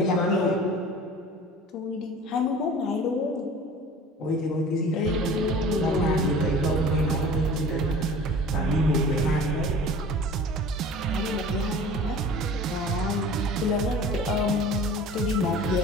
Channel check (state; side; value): normal; both; correlation 0.42